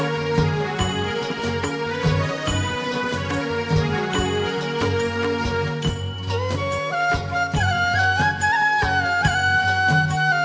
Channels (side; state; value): both; identical; correlation 1.00